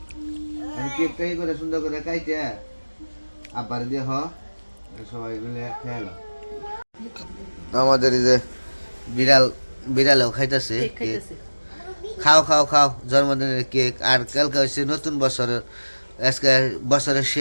কেক টাই করে সুন্দর করে কাইতে আবার দিয়ে হ সবাই মিলে খেয়ালো আমাদের এই যে বিড়ালও খাইতেছে কেক খাইতেছে খাও খাও খাও জন্মদিনের কেক আর কালকে হচ্ছে নতুন বছরের আজকে বছরের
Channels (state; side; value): inverted; both; correlation -1.00